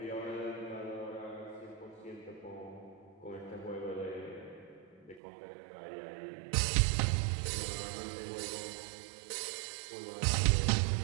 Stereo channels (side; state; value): left; drops out; at 5.2 s